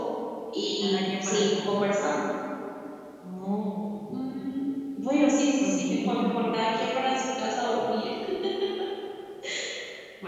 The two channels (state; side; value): identical; both; correlation 1.00